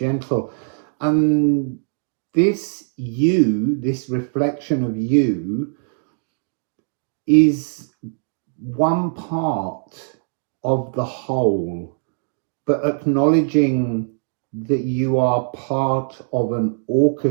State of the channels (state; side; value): silent; left; digital silence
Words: And this you, this reflection of you, is one part of the whole, but acknowledging that you are part of an